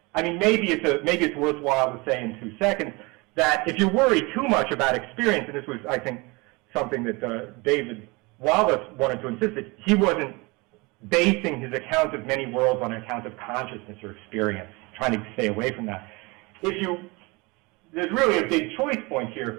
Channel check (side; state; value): left; quieter; 25.9 dB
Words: I mean, maybe it's worthwhile to say in 2 seconds that if you worry too much about experience, and this was, I think, something that David Wallace wanted to insist that he wasn't basing his account of many worlds on an account of consciousness or experience, trying to stay away from that. There's really a big choice point